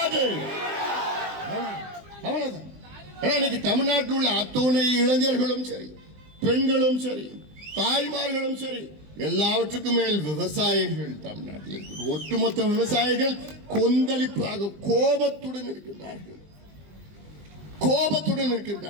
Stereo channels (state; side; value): late; left; 20 ms